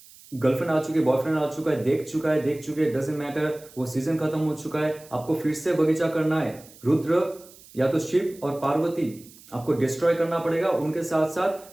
गर्लफ्रेंड आ चुकी है, बॉयफ्रेंड आ चुका है, देख चुके, डजंट मैटर, वो सीजन खत्म हो चुका है, आपको फिर से बगीचा करना है। रुद्र या तो शिव और पार्वती आपको डिस्ट्रॉय करना पड़ेगा। उनके साथ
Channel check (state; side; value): noise; right; hiss, 22 dB below the sound